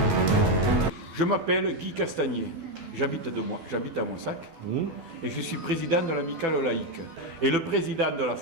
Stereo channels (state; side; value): late; left; 12 ms